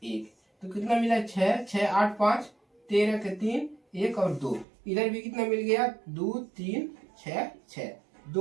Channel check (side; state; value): left; drops out; at 4.7 s